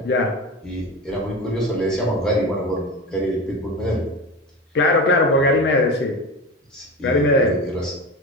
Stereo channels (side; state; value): both; normal; correlation 0.26